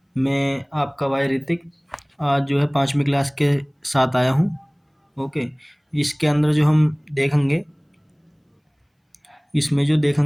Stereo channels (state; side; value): identical; both; correlation 1.00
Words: मैं आपका भाई ऋतिक आज जो है 5वीं क्लास के साथ आया हूँ। ओके। इसके अंदर जो हम देखेंगे, इसमें जो